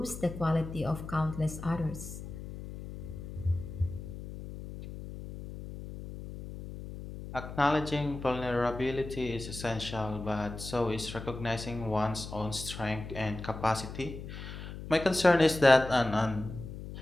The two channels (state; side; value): noise; left; hum, 10 dB below the sound